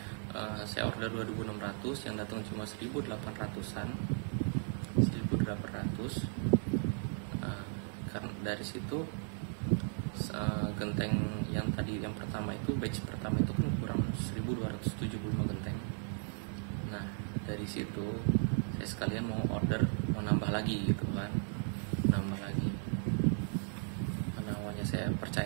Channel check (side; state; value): left; silent; 54 dB below the other